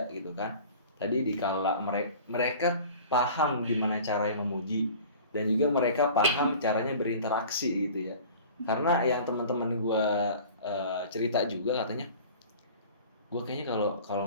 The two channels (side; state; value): both; inverted; correlation -0.43